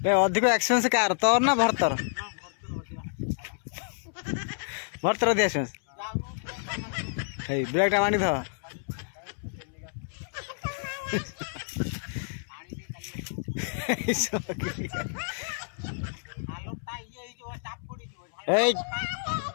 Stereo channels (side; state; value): right; silent; 58 dB below the other